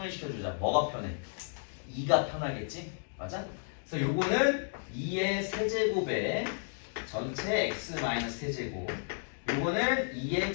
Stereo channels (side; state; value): right; silent; digital silence